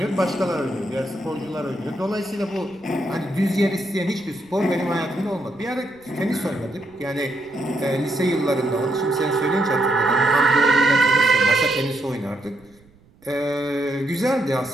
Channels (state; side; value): noise; right; rumble, 29 dB below the sound